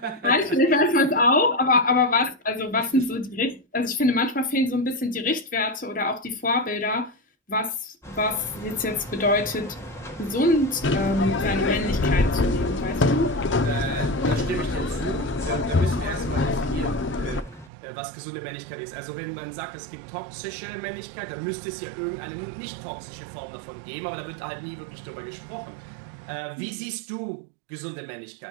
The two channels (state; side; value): drops out; left; at 17.7 s